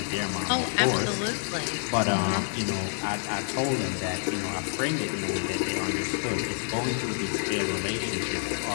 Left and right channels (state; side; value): silent; right; 59 dB below the other